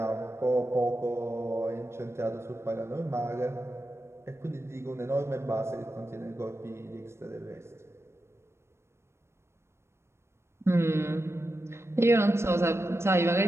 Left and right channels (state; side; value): late; left; 0.13 ms